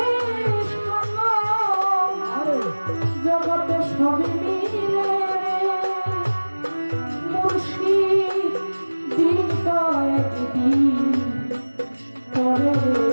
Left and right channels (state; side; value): inverted; both; correlation -1.00